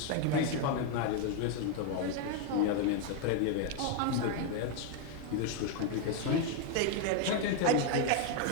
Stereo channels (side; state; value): both; different; correlation 0.01